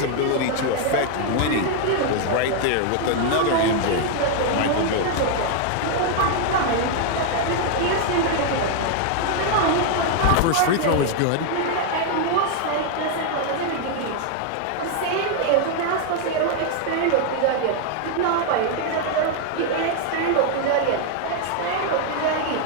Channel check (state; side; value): different; both; correlation 0.00